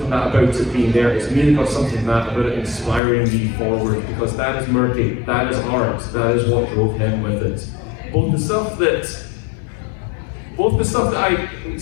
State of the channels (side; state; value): right; drops out; at 3.0 s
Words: that about it being there. It's me that got something from that about it inspiring me forward, because that is Murky, that is art, that is what drove him with it. Both the stuff that I